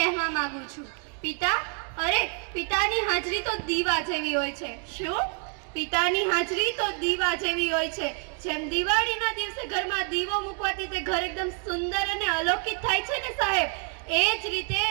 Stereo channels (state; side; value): quieter; left; 39.4 dB